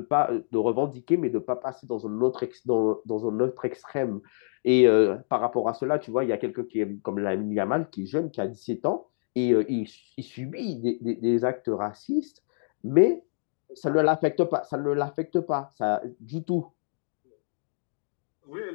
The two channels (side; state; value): right; silent; digital silence